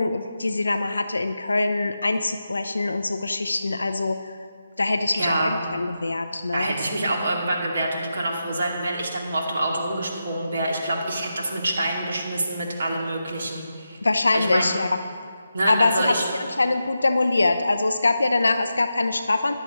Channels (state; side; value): inverted; both; correlation -0.89